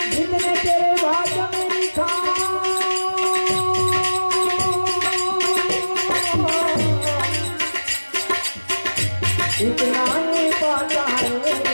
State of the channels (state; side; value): inverted; both; correlation -1.00